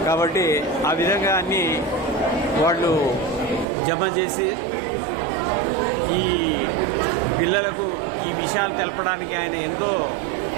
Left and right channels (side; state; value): left; drops out; at 3.7 s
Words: కాబట్టి ఆ విధంగా అన్నీ వాళ్ళు జమ చేసి ఈ పిల్లలకు ఈ విషయాలు తెలపడానికి ఆయన ఎంతో